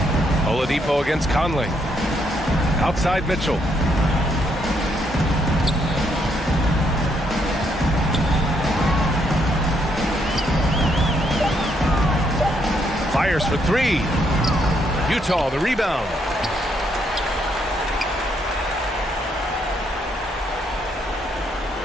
Oladipo against Conley. Outside fires for three. Utah the rebound.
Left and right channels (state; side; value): normal; both; correlation 0.74